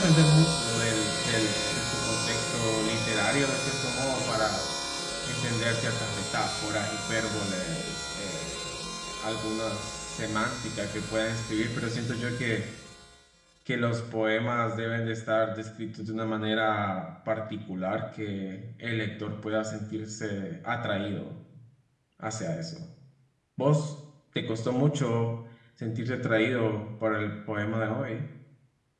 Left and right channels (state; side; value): identical; both; correlation 1.00